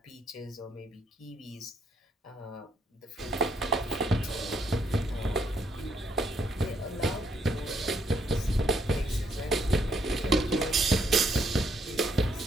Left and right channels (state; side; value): normal; both; correlation 0.72